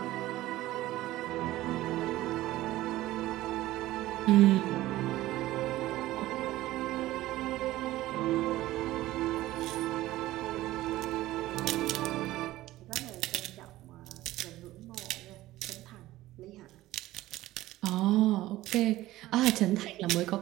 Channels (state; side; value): quieter; left; 16.3 dB